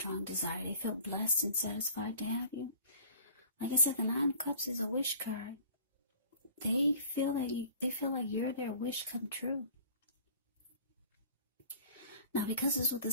desire. They feel blessed and satisfied to have you. Like I said, the 9 of Cups is a wish card. They feel like you're their wish come true. Now, because it's with the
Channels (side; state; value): both; inverted; correlation -0.47